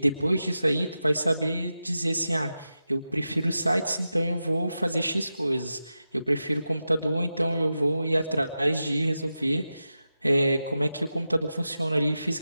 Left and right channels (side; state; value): both; inverted; correlation -0.91